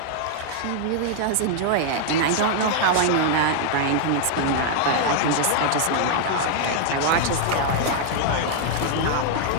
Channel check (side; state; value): both; different; correlation 0.00